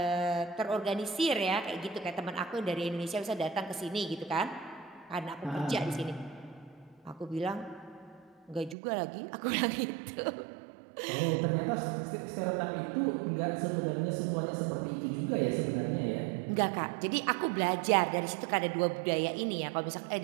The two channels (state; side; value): drops out; left; at 8.8 s